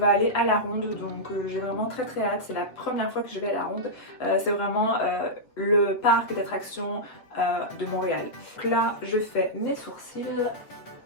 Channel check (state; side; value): late; right; 7.6 ms